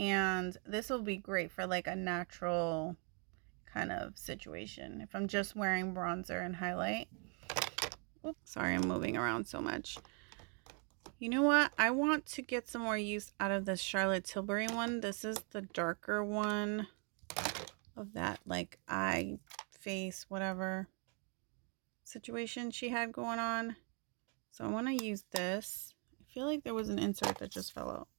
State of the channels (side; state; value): left; quieter; 38.5 dB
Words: this will be great for like a natural kind of situation if I'm just wearing bronzer and highlight. Oops, sorry, I'm moving around so much. You know what? I want to get some more use out of this Charlotte Tilbury one. This is the darker one of that like eye, face, whatever situation she had going on. So I want to use this. I feel like there was an insert that just fell out.